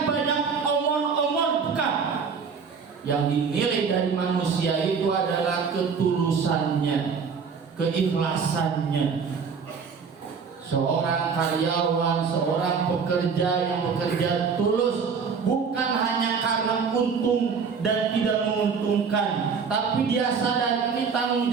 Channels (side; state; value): left; quieter; 5.8 dB